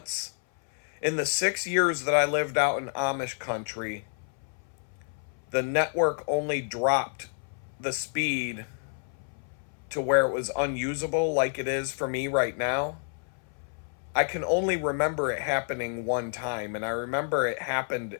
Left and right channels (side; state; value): right; silent; 59 dB below the other